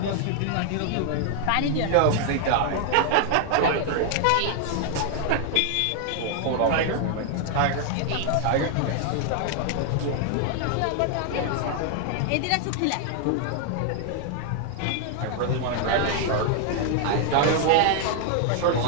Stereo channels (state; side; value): different; both; correlation 0.00